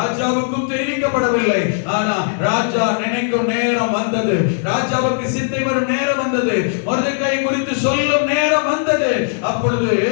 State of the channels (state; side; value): silent; right; digital silence